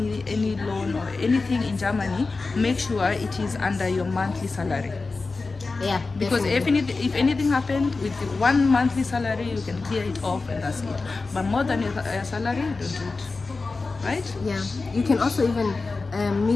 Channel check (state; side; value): quieter; right; 3.9 dB